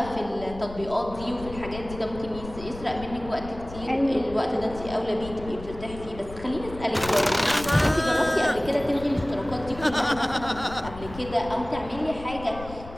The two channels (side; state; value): left; noise; rumble, 13 dB below the sound